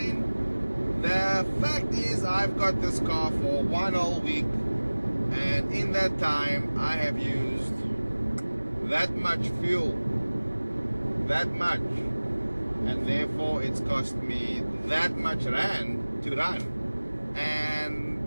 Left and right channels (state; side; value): inverted; both; correlation -1.00